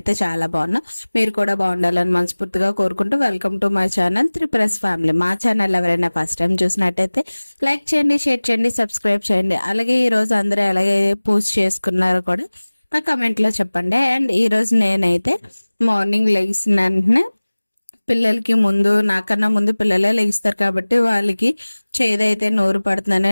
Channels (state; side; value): inverted; both; correlation -1.00